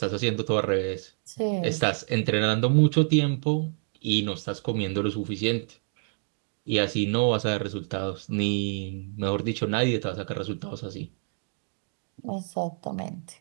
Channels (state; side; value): silent; left; 60 dB below the other